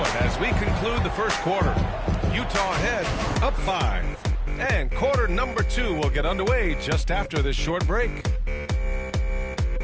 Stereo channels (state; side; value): identical; both; correlation 1.00